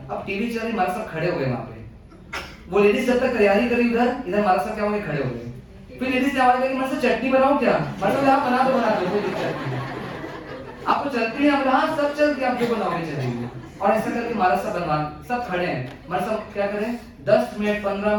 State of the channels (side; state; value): both; identical; correlation 1.00